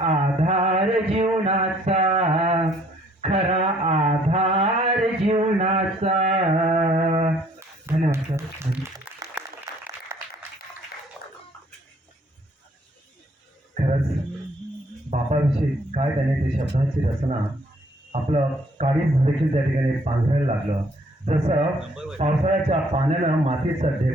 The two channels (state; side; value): normal; both; correlation 0.62